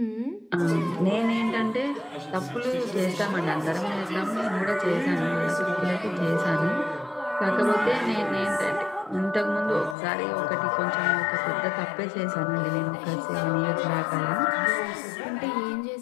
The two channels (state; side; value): drops out; right; at 10.0 s